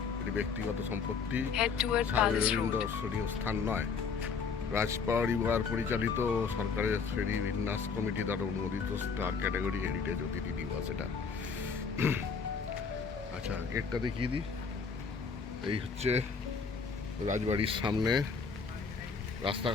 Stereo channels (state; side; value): quieter; right; 5.5 dB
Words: এটি ব্যক্তিগত সম্পত্তি, সার্বজনীন দর্শনীয় স্থান নয়। রাজপরিবার পরিচালিত সরকারের শ্রেণী বিন্যাস কমিটি দ্বারা অনুমোদিত স্টার ক্যাটাগরি হেরিটেজ অতিথি নিবাস এটা। আচ্ছা, গেটটা দেখিয়ে দিই। এই হচ্ছে রাজবাড়ির সামনে